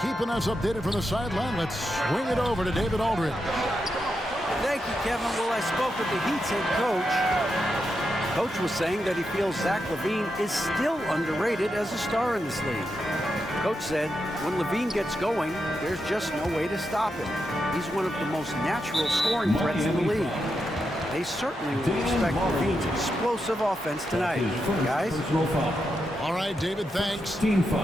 keeping us updated from the sideline, let's swing it over to David Aldridge. Thank you, Kevin. Well, I spoke with the Heat's head coach. Coach was saying that he feels Zach LaVine is still underrated as a star in this league. Coach said when LaVine gets going, there's just no way to stop him. He's one of the most natural scoring threats in the league. They certainly will expect LaVine's explosive offense tonight. Guys? All right, David, thanks.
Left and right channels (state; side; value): normal; both; correlation 0.86